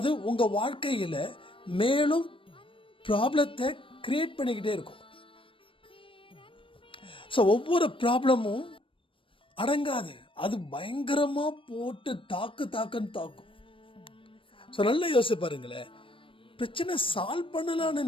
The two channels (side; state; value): right; late; 0.25 ms